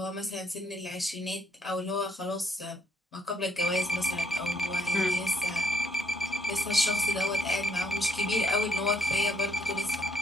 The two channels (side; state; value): both; normal; correlation 0.70